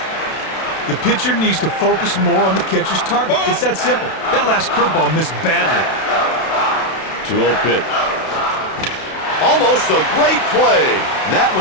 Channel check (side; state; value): right; late; 32 ms